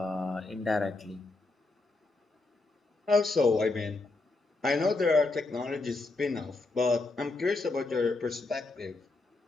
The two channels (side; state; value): right; quieter; 3.4 dB